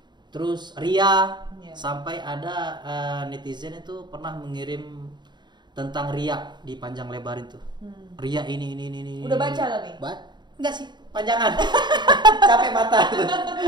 Terus ria sampai ada netizen itu pernah mengirim tentang ria di panjang lebar itu. Ria ini. Udah baca tapi? Enggak sih, panjangan. Capek mata gitu.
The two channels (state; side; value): late; left; 0.21 ms